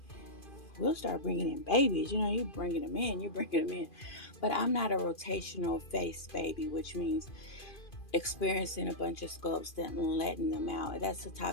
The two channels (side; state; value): right; late; 2.4 ms